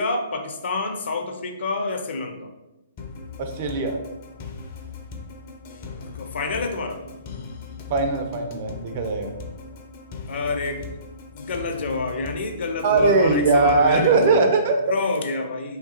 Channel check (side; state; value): both; inverted; correlation -0.49